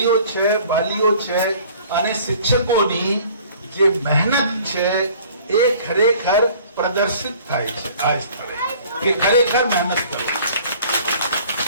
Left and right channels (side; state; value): both; inverted; correlation -0.52